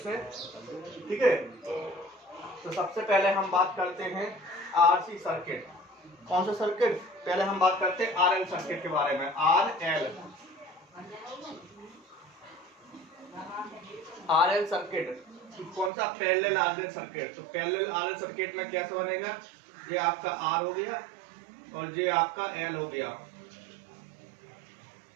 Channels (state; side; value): drops out; left; at 15.9 s